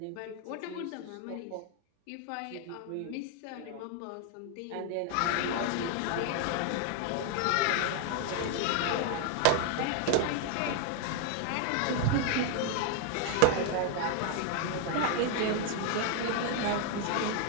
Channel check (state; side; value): different; both; correlation 0.01